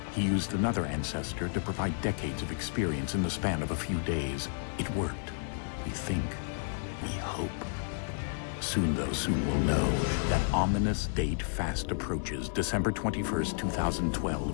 He used another ancestor to provide decades of experience in the span of a few days. It worked. We think. We hope. Soon, though, soon we'll know. That ominous date fast approaches, December 21st,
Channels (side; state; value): right; silent; digital silence